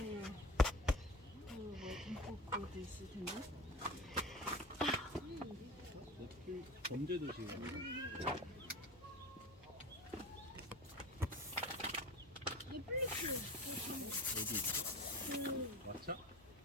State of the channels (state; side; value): normal; both; correlation 0.32